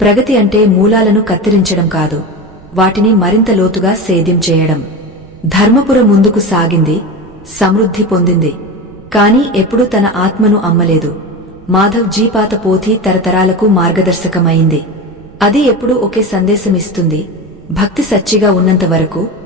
ప్రగతి అంటే మూలాలను కత్తిరించడం కాదు, వాటిని మరింత లోతుగా సేద్యం చేయడం. ధర్మపుర ముందుకు సాగింది, సమృద్ధి పొందింది. కాని ఎప్పుడూ తన ఆత్మను అమ్మలేదు. మాధవ్ జీ పాత పోథి తరతరాలకు మార్గదర్శకమైంది. అది ఎప్పుడూ ఒకే సందేశమిస్తుంది, భక్తి సచ్చిగా ఉన్నంత వరకు,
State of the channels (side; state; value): right; noise; rumble, 23 dB below the sound